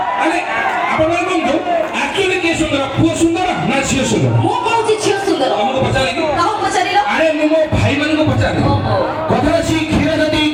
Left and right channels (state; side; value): identical; both; correlation 1.00